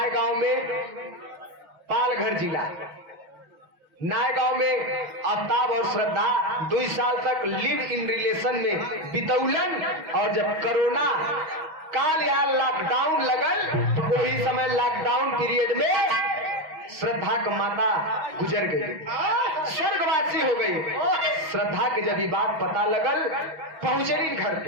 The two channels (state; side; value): late; left; 6.1 ms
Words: गांव में, पालघर जिला नाय गांव में आफ्ताब और श्रद्धा 2 साल तक लिव इन रिलेशन में बितौलन। और जब कोरोना काल या लॉकडाउन लगल तो वही समय लॉकडाउन पीरियड में श्रद्धा का माता गुजर गई, स्वर्गवासी हो गई। श्रद्धा के जब बात पता लगल, पहुंचलिन घर